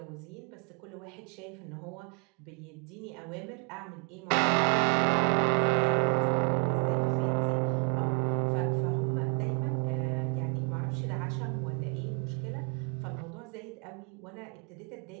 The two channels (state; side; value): quieter; left; 36.4 dB